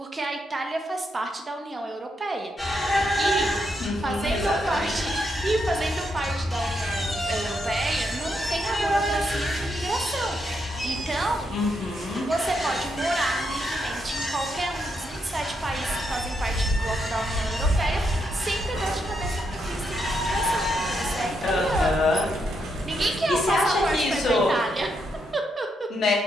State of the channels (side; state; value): both; normal; correlation 0.80